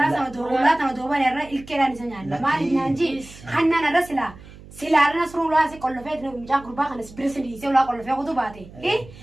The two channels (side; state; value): right; noise; hum, 19 dB below the sound